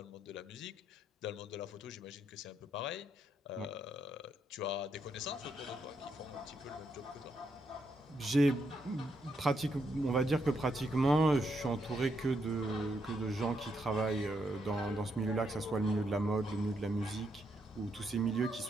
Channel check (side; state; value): both; normal; correlation 0.78